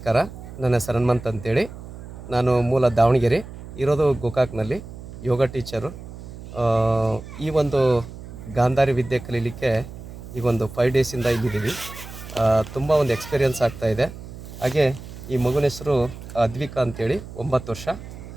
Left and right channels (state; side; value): noise; right; hum, 13 dB below the sound